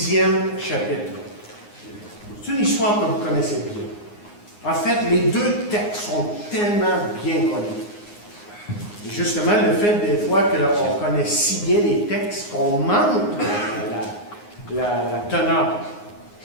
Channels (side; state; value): right; late; 9.6 ms